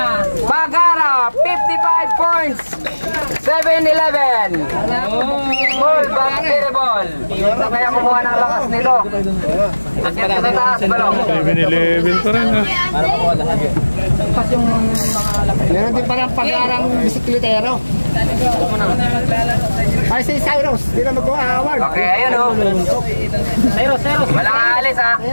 55 points, 7-11. Ball, basketball. Ito kaya kumuha ng lakas nito. Akyat ka sa taas, balong. 7-11 pa rin ha. Meron din parang pag-arang bisiklitero. Ay, si Cyrus. Hindi na mag-award. Okay, ayun o. Cyrus. Walang aalis ha.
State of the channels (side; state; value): both; inverted; correlation -1.00